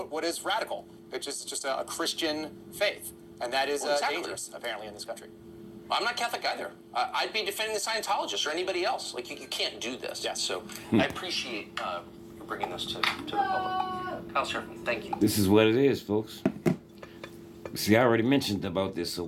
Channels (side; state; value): both; identical; correlation 1.00